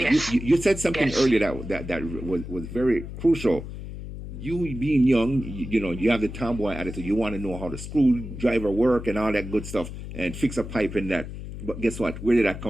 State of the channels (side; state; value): left; noise; hum, 10 dB below the sound